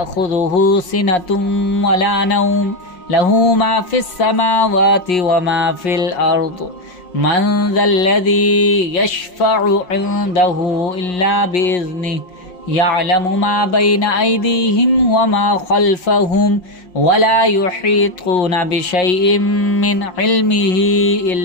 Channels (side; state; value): right; late; 5.5 ms